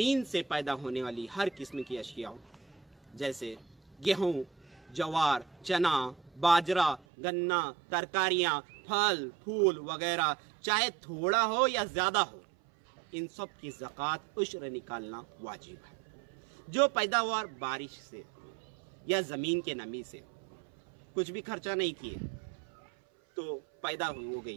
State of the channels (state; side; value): drops out; left; at 7.0 s